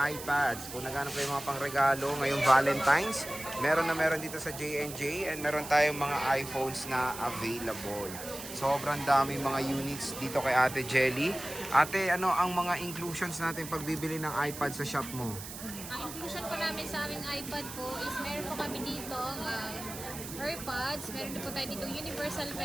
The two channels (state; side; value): noise; right; hiss, 11 dB below the sound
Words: iPads. Kung naghanap kayo mga pangregalo ngayong Valentine's, meron dito sa J&J and meron tayong mga iPhones na available. Sobrang daming mga units dito kay Ate Jelly. Ate, ano ang mga inclusions natin pag bibili ng iPad sa shop mo? Ang inclusion po namin sa aming iPad po is meron po kami dito AirPods, meron din po tayo dito universal